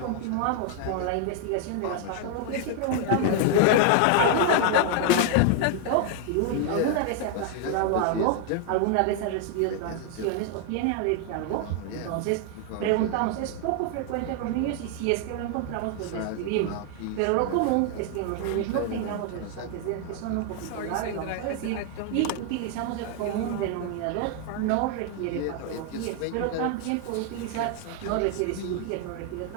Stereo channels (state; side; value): different; both; correlation 0.00